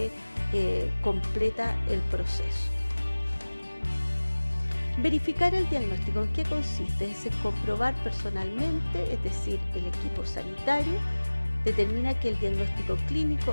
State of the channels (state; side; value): inverted; both; correlation -1.00